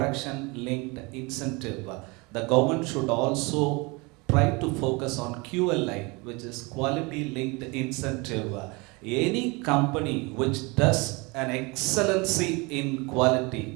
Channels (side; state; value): left; quieter; 27.0 dB